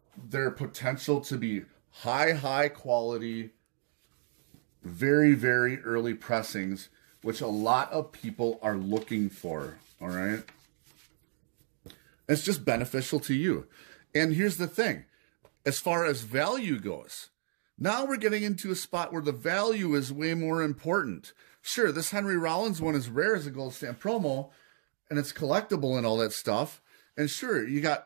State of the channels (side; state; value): left; silent; digital silence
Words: their potential to be high quality, very, very early pressings, which a lot of people are looking for. All right. It's just beneficial to you. And here's the thing. As far as value goes, now we're getting into a spot where the value is way more important. Sure, this Henry Rollins one is rare as a gold stamp promo, and it's collectible and all that stuff. And sure, you